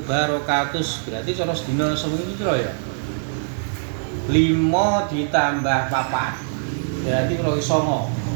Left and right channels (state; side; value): silent; left; digital silence